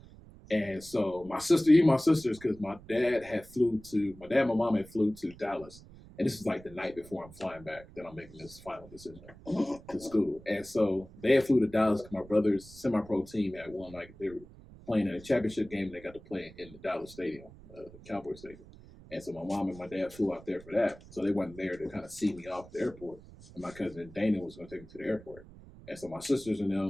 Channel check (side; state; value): right; noise; rumble, 20 dB below the sound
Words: And so my sisters, because my dad and my mom had flew to Dallas. And this is like the night before I'm flying back that I'm making this final decision to school. And so they had flew to Dallas because my brother's semi-pro team had won, like they were playing in a championship game, and they got to play in the Dallas stadium, the Cowboy Stadium. And so my mom and my dad flew out there for that. So they wasn't there to kind of see me off at the airport. And my cousin Dana was going to take me to the airport. And so my sisters and